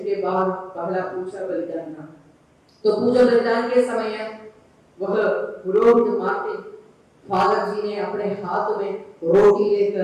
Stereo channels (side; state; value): both; identical; correlation 1.00